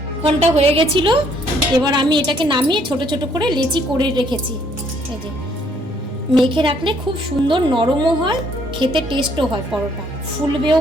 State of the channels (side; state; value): both; normal; correlation 0.65